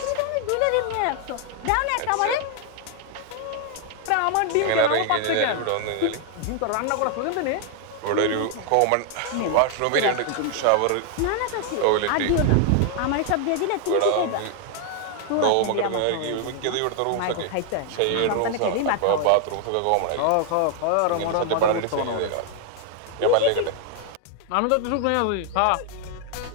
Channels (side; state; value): both; different; correlation 0.00